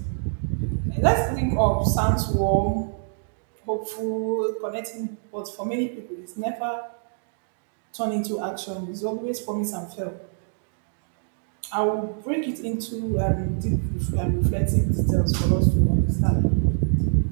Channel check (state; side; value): silent; left; digital silence